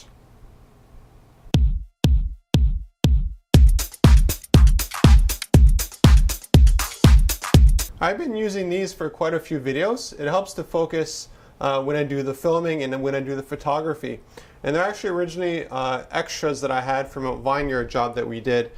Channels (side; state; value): both; identical; correlation 1.00